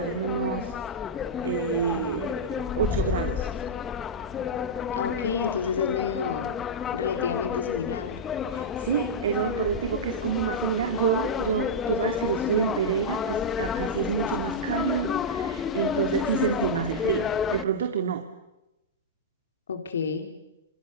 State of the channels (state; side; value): normal; both; correlation -0.08